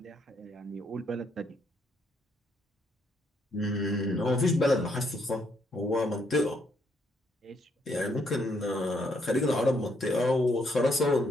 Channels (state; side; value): normal; both; correlation 0.73